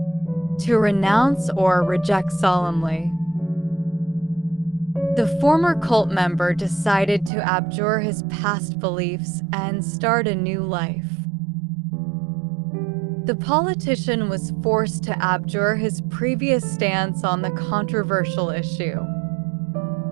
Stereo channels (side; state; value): left; drops out; at 7.3 s